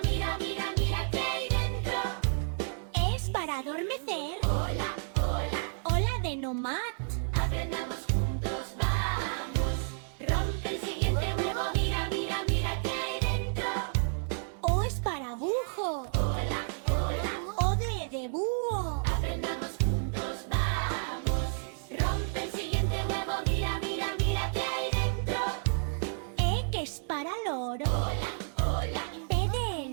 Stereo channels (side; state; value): left; silent; digital silence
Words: mira, mira, mira qué hay dentro. Es para adormecer. Hola, hola, Hola de nomad. aprendamos juntos, vamos. Rompe el siguiente huevo, mira, mira, mira qué hay dentro. O es para bujo. Hola, hola, O de búho. aprendamos juntos, vamos. Rompe el siguiente huevo, mira, mira, mira qué hay dentro. E que es para loro. Hola, hola, P de